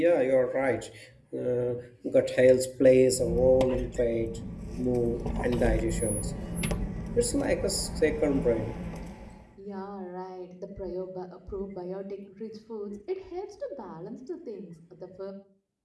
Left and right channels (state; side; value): identical; both; correlation 1.00